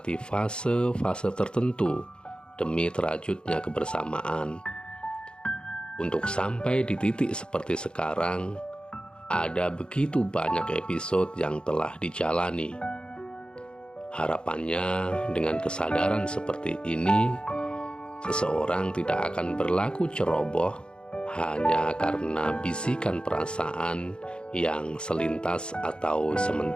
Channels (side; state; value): right; late; 0.052 ms